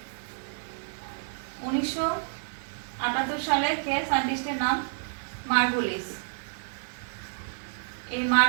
1978 সালে কে সায়েন্টিস্টের নাম? মার্গুলিস। এই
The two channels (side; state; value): left; silent; digital silence